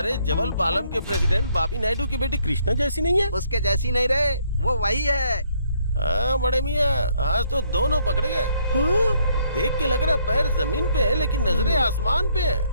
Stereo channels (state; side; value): inverted; both; correlation -0.68